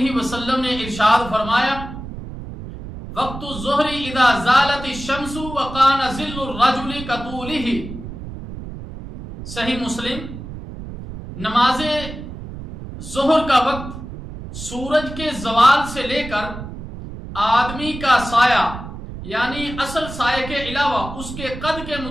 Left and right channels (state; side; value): noise; right; rumble, 11 dB below the sound